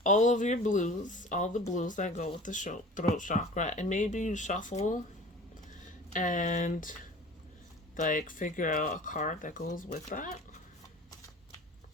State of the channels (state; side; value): normal; both; correlation 0.42